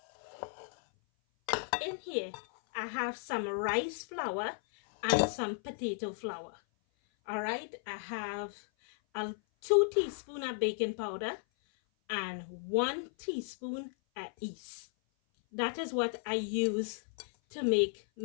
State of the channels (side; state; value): right; silent; 55 dB below the other